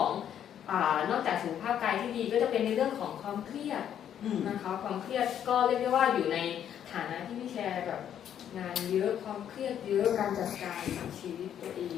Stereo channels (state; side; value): quieter; right; 9.7 dB